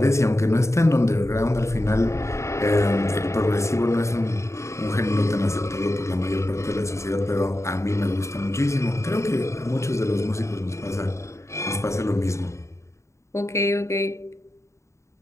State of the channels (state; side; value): late; right; 0.14 ms